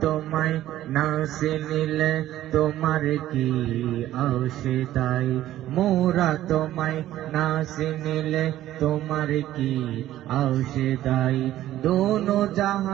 তোমায় না চিনিলে তোমার কি আশিদাই মোরা তোমায় না চিনিলে তোমার কি আশিদাই দোনো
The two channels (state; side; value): quieter; left; 13.7 dB